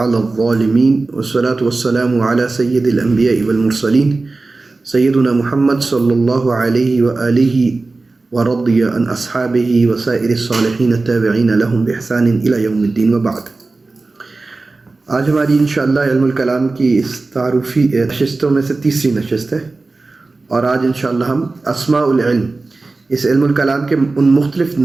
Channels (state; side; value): quieter; left; 3.5 dB